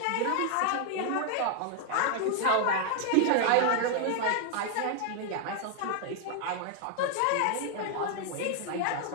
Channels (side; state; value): both; different; correlation 0.00